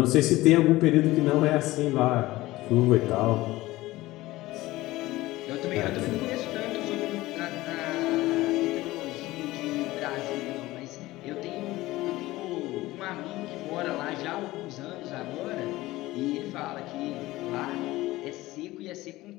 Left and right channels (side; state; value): right; quieter; 18.2 dB